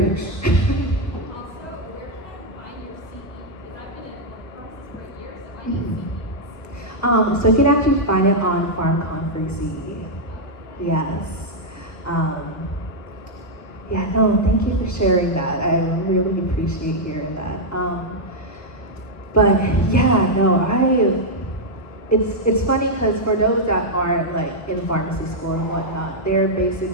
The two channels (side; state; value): right; late; 1.5 ms